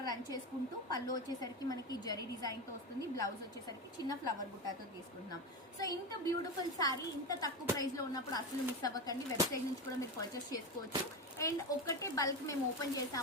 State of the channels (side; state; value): both; normal; correlation 0.19